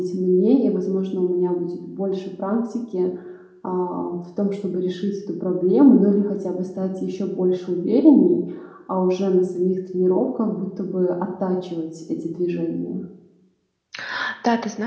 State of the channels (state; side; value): identical; both; correlation 1.00